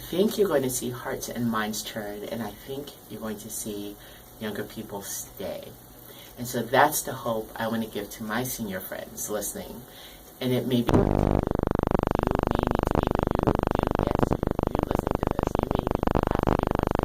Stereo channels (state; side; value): identical; both; correlation 1.00